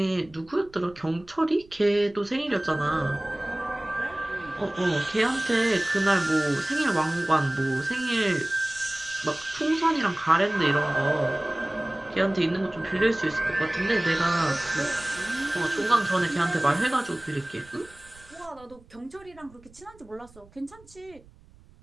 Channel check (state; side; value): noise; right; rumble, 25 dB below the sound